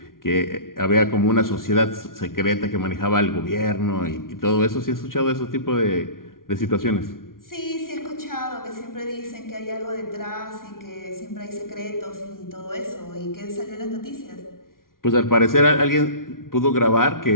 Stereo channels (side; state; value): right; late; 0.91 ms